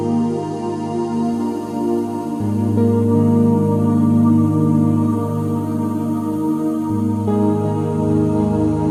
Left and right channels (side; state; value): both; identical; correlation 1.00